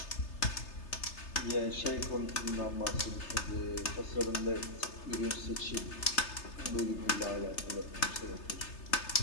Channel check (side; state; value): right; late; 3.3 ms